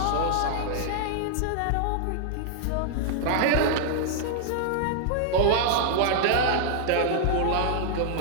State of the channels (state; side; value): different; both; correlation -0.01